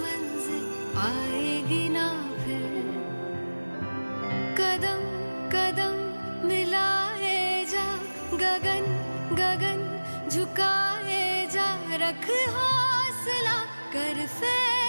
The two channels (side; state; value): both; inverted; correlation -1.00